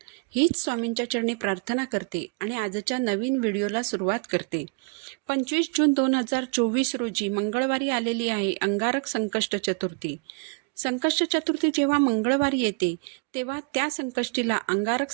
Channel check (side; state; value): left; quieter; 34.4 dB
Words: हीच स्वामींच्या चरणी प्रार्थना करते आणि आजच्या नवीन व्हिडिओला सुरुवात करते. 25 जून 2024 रोजी मंगळवारी आलेली आहे अंगारक संकष्ट चतुर्थी. संकष्ट चतुर्थी जेव्हा मंगळवारी येते तेव्हा त्या संकष्टीला अंगारक